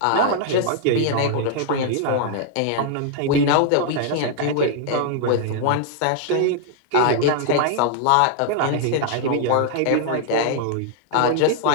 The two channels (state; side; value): different; both; correlation -0.01